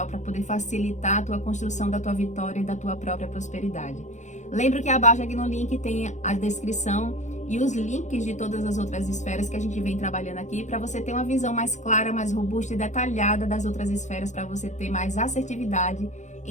para poder facilitar a tua construção da tua vitória e da tua própria prosperidade. Lembra que abaixo aqui no link tem a descrição e os links de todas as outras esferas que a gente vem trabalhando aqui, para você ter uma visão mais clara, mais robusta e detalhada das outras esferas, para você ter mais assertividade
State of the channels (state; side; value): late; right; 0.35 ms